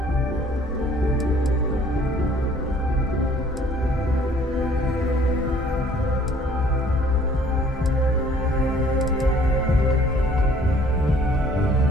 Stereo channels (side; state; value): both; normal; correlation 0.57